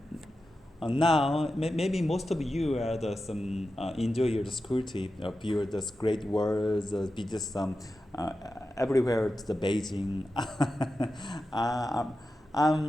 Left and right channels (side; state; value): both; normal; correlation 0.92